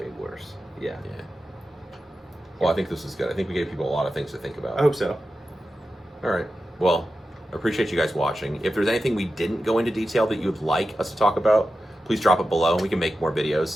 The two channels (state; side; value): normal; both; correlation 0.92